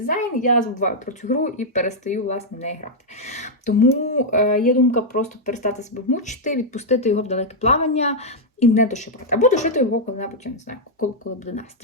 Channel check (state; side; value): normal; both; correlation -0.03